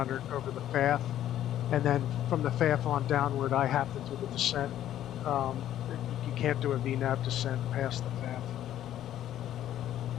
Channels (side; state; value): right; quieter; 11.9 dB